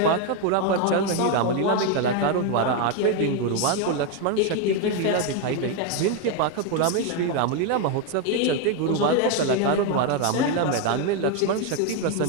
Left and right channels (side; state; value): both; different; correlation 0.01